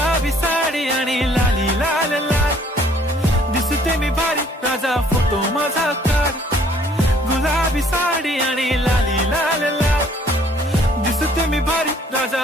साडी आणि लाली लाल लाल दिसते मी भारी राजा फोटो माझा काढ गुलाबी साडी आणि लाली लाल लाल दिसते मी भारी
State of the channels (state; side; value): normal; both; correlation 0.60